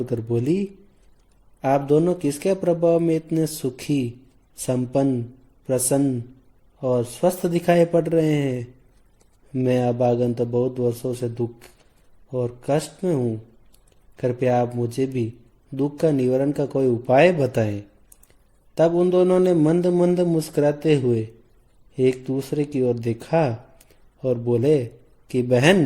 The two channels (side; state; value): both; identical; correlation 1.00